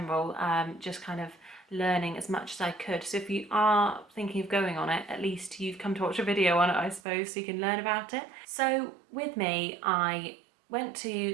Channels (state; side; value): drops out; left; at 7.0 s